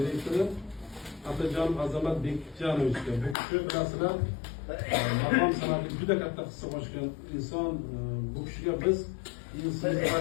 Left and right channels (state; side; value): drops out; right; at 3.4 s